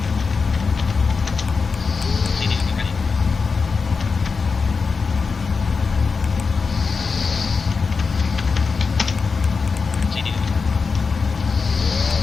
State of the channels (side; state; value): right; quieter; 4.9 dB